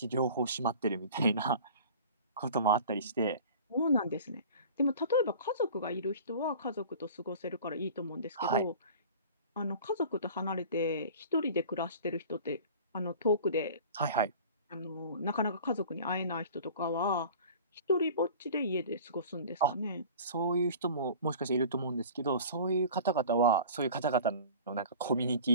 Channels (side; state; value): both; inverted; correlation -0.41